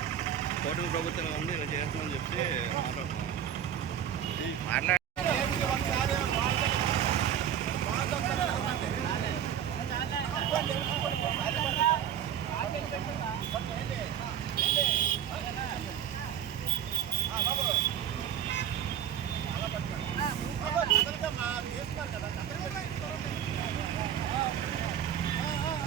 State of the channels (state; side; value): quieter; left; 9.6 dB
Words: కూటమి ప్రభుత్వం ఉంది ఇలా చేస్తుందని చెప్తే మాట్లాడుతున్నాం మాట్లాడ